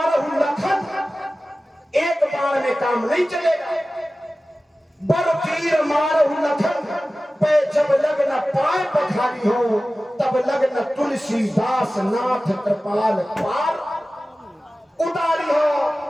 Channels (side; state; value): both; normal; correlation 0.96